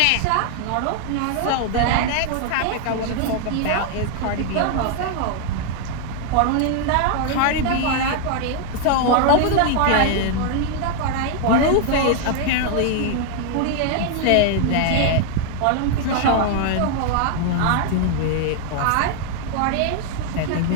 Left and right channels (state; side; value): different; both; correlation 0.00